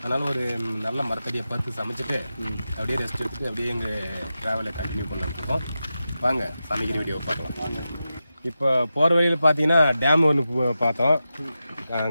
அதனால் ஒரு நல்ல மரத்தடியை பார்த்து சமைச்சிட்டு அப்படியே ரெஸ்ட் எடுத்துட்டு அப்படியே எங்கள் ட்ராவலை கண்டினியூ பண்ணலாம்னு வாங்க சமைக்கிற வீடியோ பார்க்கலாம். இப்போ போகிற வழியில் பார்த்தீங்கன்னா டேம் ஒன்று பார்த்தோம்.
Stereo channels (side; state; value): both; inverted; correlation -0.91